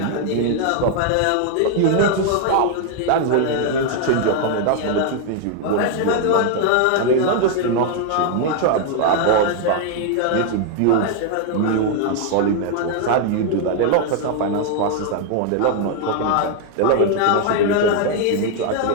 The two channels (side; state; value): both; different; correlation 0.00